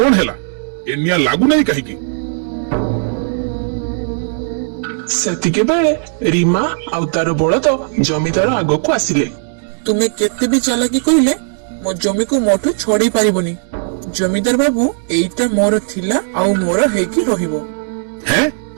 ହେଲା? ଏ ନିଆଁ ଲାଗୁନାହିଁ କାହିଁକି? ସେତିକି ବେଳେ ରୀମା ଆଉ ତାର ବଳଦ ଜମିଦାର ଆଗକୁ ଆସିଲେ। ତୁମେ କେତେ ବି ଚାଲାକି କହିଲେ ମୋ ଜମିକୁ ମୋଠୁ ଛଡେଇ ପାରିବନି। ଜମିଦାର ବାବୁ, ଏଇଟା ମୋର ଥିଲା ଆଉ ମୋର ହେଇକି ରହିବ। ହେଁ,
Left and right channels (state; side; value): silent; left; digital silence